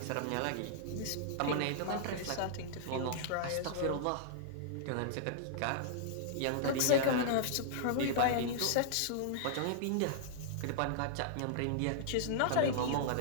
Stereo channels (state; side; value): different; both; correlation -0.01